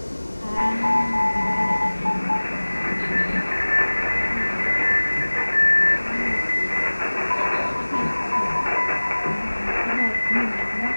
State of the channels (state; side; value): inverted; both; correlation -1.00